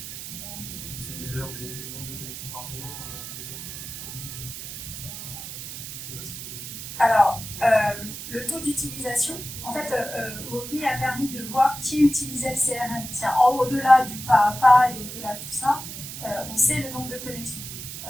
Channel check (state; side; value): noise; right; hiss, 9 dB below the sound